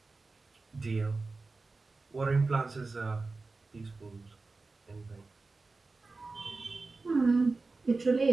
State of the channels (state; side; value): quieter; left; 3.7 dB